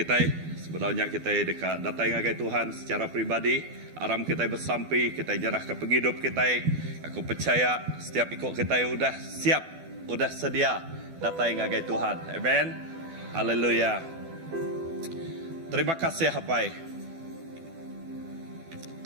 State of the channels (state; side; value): late; left; 12 ms